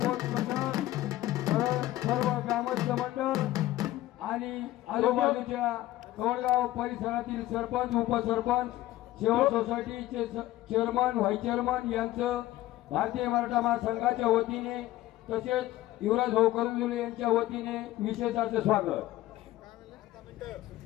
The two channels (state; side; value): quieter; right; 15.7 dB